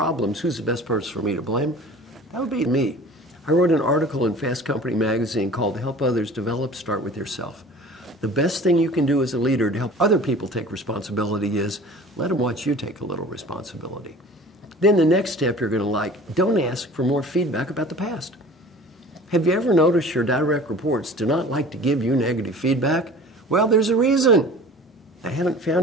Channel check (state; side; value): normal; both; correlation 0.43